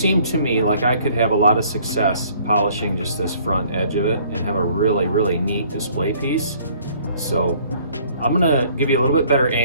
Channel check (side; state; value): both; inverted; correlation -0.58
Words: to me like I could have a lot of success polishing just this front edge of it and have a really neat display piece. So I'm gonna give you a little bit better